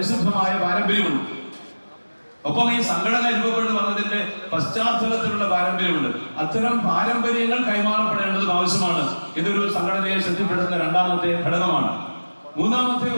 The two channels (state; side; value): inverted; both; correlation -1.00